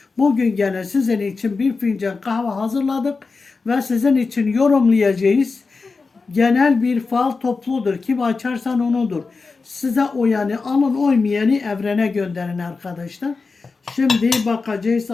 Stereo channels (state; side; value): quieter; right; 4.3 dB